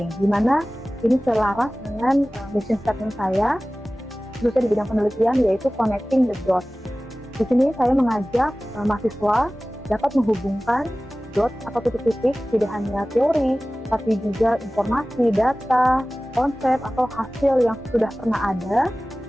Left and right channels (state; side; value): normal; both; correlation 0.97